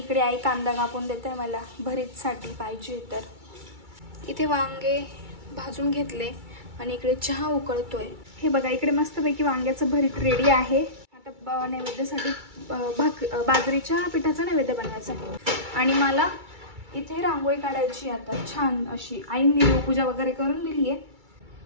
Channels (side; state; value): left; late; 2.3 ms